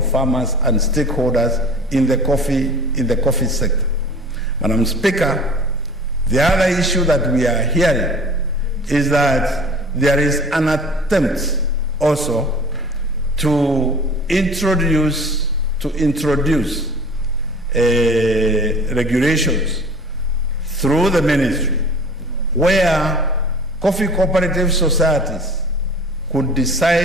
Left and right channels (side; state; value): both; normal; correlation 0.43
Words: and stakeholders in the coffee sector. Madam Speaker, the other issue that we are hearing is that there is an attempt also to introduce regulations through the ministry where coffee cooperative societies could